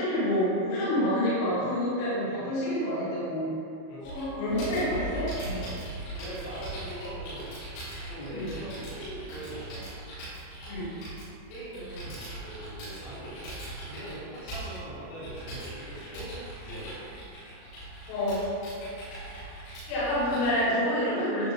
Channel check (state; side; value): late; right; 37 ms